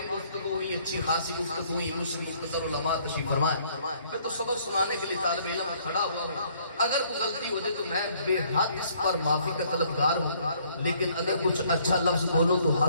گفتگو ہوئی، اچھی خاصی گفتگو ہوئی، مسلم مختصر علماء تشریف فرمائے۔ میں تو سبق سنانے کے لیے طالب علم میں کھڑا ہوا ہوں، اگر کوئی غلطی ہو جائے تو میں بے حد اس پر معافی کا طلبگار ہوں، لیکن اگر کچھ اچھا لفظ بولو تو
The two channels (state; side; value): inverted; both; correlation -0.63